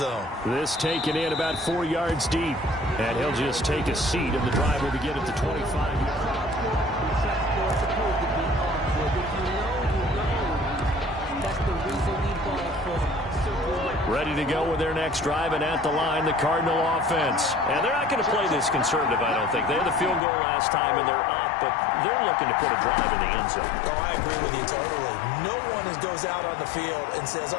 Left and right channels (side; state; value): right; drops out; at 20.2 s